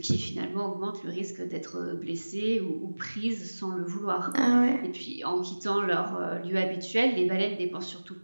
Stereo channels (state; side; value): inverted; both; correlation -1.00